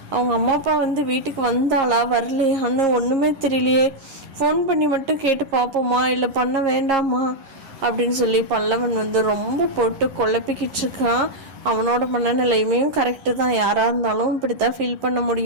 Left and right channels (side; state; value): left; late; 11 ms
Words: அவங்க அம்மா அப்பா வந்து வீட்டுக்கு வந்தாளா வரலையான்னு ஒன்றுமே தெரியலையே. ஃபோன் பண்ணி மட்டும் கேட்டு பார்ப்போமா இல்லை பண்ண வேண்டாமா அப்படின்னு சொல்லி பல்லவன் வந்து ரொம்ப போட்டு குழப்பிக்கிட்டு இருக்கான். அவனோட மனநிலையுமே கரெக்டு தான், யாராக இருந்தாலும் இப்படி தான் ஃபீல் பண்ண